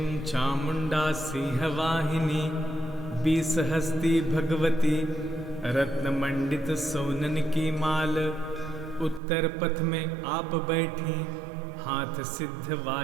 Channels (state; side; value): drops out; left; at 9.2 s